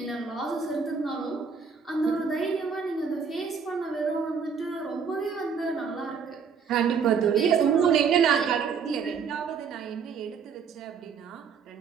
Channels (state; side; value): quieter; left; 6.1 dB